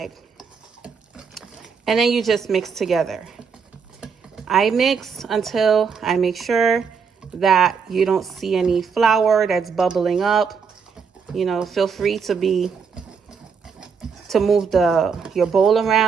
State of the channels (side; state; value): left; quieter; 6.0 dB